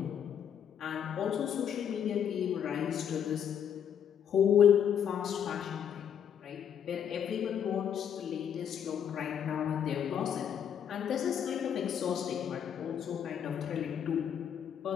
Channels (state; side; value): quieter; right; 8.6 dB